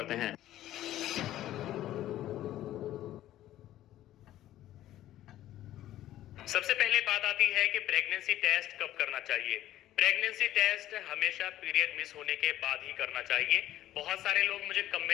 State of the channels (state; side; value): quieter; right; 13.5 dB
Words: हैं। सबसे पहले बात आती है कि प्रेगनेंसी टेस्ट कब करना चाहिए। प्रेगनेंसी टेस्ट हमेशा पीरियड मिस होने के बाद ही करना चाहिए। बहुत सारे लोग मुझे